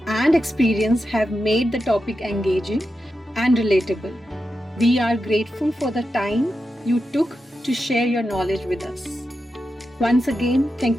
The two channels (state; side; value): normal; both; correlation 0.89